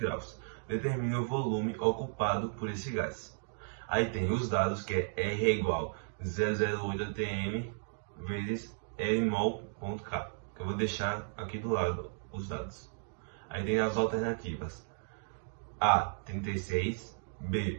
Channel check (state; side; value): silent; left; digital silence